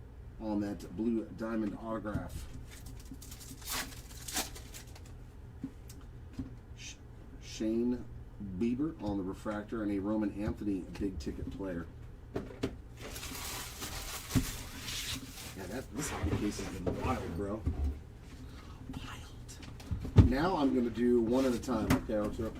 on that blue diamond autograph. Shane Bieber on the refractor and a Roman Anthony big ticket player. Yeah, this hobby case has been wild, bro. Wild. Now I'm going to do one at a time, okay, Archer?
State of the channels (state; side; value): identical; both; correlation 1.00